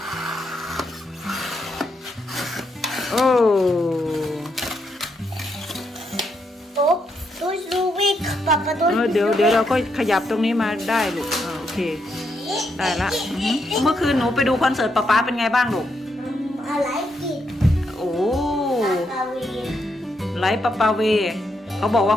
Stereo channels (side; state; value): both; normal; correlation 0.79